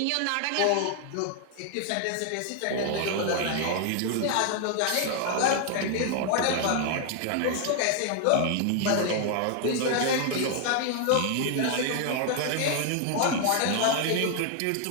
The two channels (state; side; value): different; both; correlation 0.00